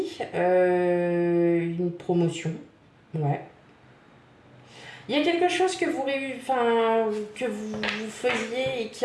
Une promotion, ouais. Il y a quelque chose que vous faisiez et qui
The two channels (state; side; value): identical; both; correlation 1.00